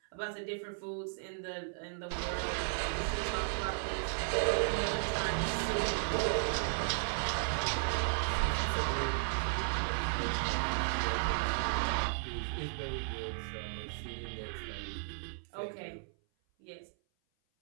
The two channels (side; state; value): left; silent; 54 dB below the other